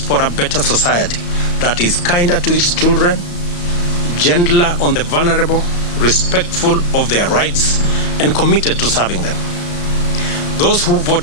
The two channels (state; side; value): late; right; 34 ms